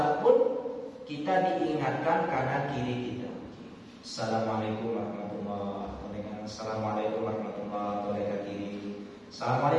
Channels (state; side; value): identical; both; correlation 1.00